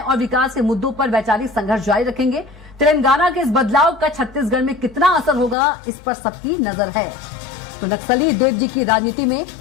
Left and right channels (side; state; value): right; drops out; at 5.6 s